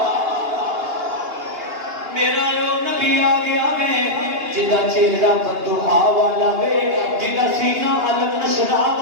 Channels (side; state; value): left; late; 2.8 ms